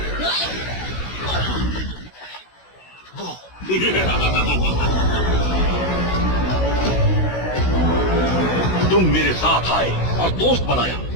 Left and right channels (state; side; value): late; right; 16 ms